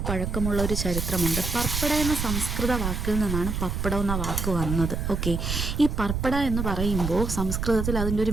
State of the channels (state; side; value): noise; right; rumble, 2 dB below the sound